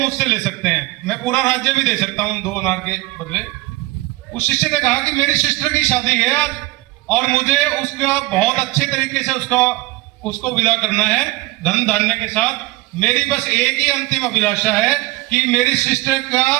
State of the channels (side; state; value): left; quieter; 20.2 dB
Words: ले सकते हैं, मैं पूरा राज्य भी दे सकता हूं 2 अनार के बदले। उस शिष्य ने कहा कि मेरी सिस्टर की शादी है आज और मुझे उसका बहुत अच्छे तरीके से उसको विदा करना है धन धान्य के साथ। मेरी बस एक ही अंतिम अभिलाषा है कि मेरी सिस्टर का